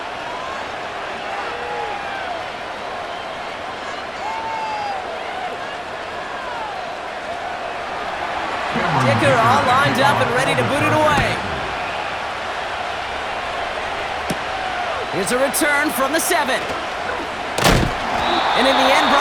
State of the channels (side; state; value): both; identical; correlation 1.00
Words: Dicker all lined up and ready to boot it away. Here's a return from the 7. And in the end,